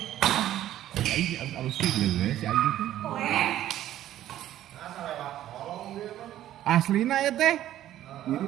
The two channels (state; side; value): quieter; left; 12.8 dB